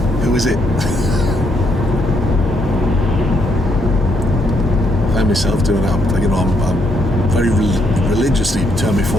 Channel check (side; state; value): both; normal; correlation 0.74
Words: who is it? I find myself doing that. Like, I'm very religiously turn my